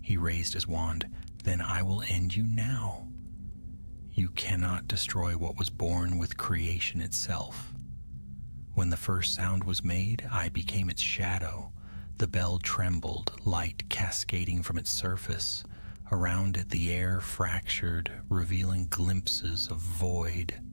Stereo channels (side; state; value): both; inverted; correlation -1.00